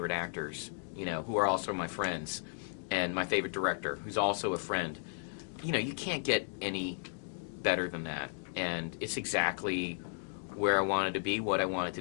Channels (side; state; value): right; silent; digital silence